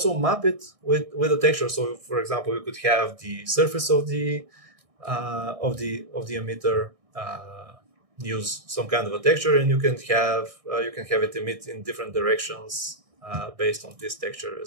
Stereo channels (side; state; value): left; late; 1.6 ms